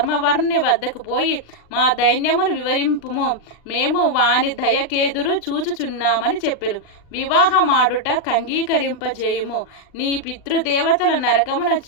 వద్దకు పోయి మా దైన్యమును వివరింపుము. మేము వాని దయకేదురు చూచుచున్నామని చెప్పెను. వివాహమాడుట కంగీకరింపజేయుము. నీ పితృదేవతల నరకమున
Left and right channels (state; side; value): late; right; 40 ms